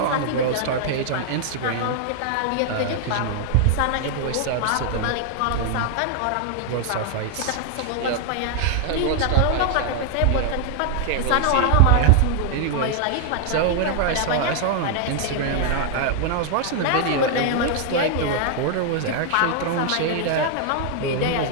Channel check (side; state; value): both; different; correlation 0.00